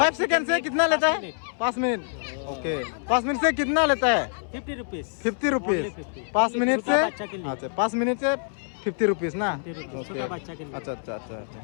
सेकेंड से कितना लेता है? 5 मिनट। ओके 5 मिनट से कितना लेता है? 50 रुपीज। 50 रुपीज 5 मिनट से। अच्छा 5 मिनट से 50 रुपीज ना। ओके अच्छा अच्छा अच्छा अच्छा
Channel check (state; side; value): silent; right; 61 dB below the other